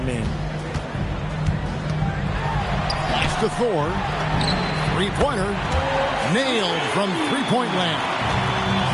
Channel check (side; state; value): both; identical; correlation 1.00